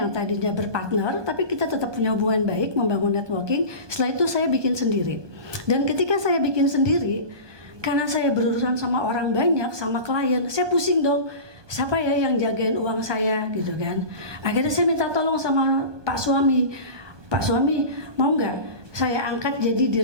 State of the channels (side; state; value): left; late; 1.2 ms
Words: tadinya berpartner tapi kita tetap punya hubungan baik, membangun networking. Setelah itu saya bikin sendiri. Dan ketika saya bikin sendiri, karena saya berurusan sama orang banyak, sama klien, saya pusing dong. Siapa ya yang jagain uang saya gitu kan? Akhirnya saya minta tolong sama Pak Suami. Pak Suami, mau nggak saya angkat jadi